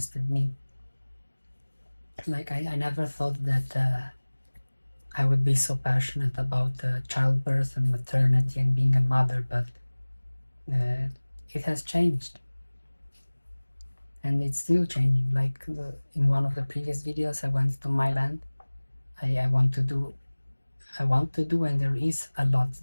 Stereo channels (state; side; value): inverted; both; correlation -1.00